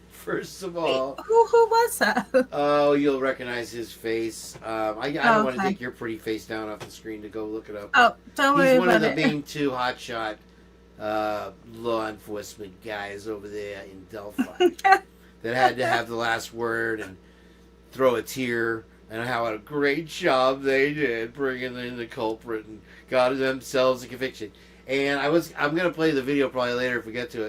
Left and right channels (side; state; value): both; identical; correlation 1.00